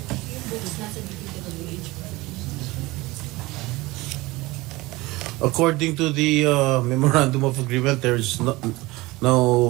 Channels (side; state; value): left; quieter; 20.9 dB